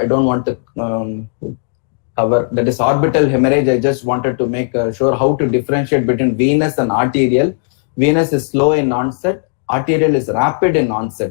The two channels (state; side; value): silent; right; digital silence